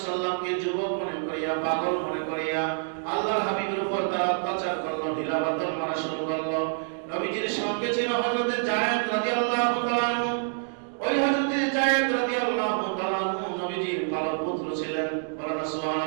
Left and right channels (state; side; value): silent; left; digital silence